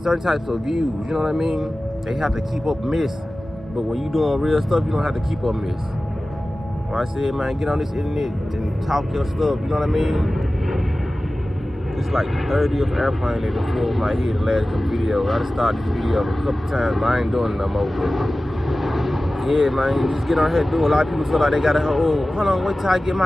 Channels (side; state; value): both; normal; correlation 0.96